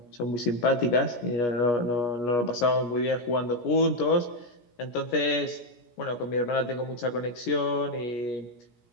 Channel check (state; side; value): late; right; 17 ms